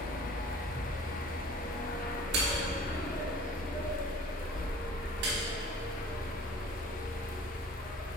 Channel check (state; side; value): normal; both; correlation 0.47